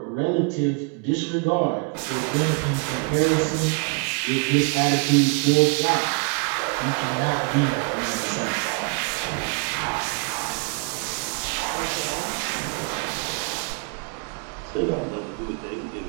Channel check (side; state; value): left; quieter; 35.3 dB